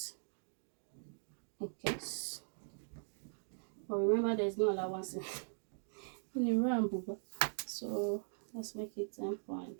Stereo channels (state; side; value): silent; left; digital silence